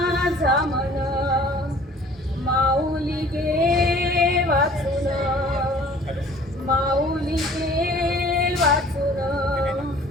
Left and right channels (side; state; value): both; normal; correlation 0.50